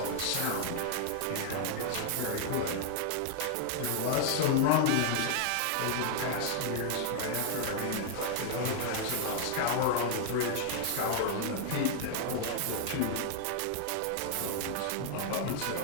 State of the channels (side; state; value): both; different; correlation 0.00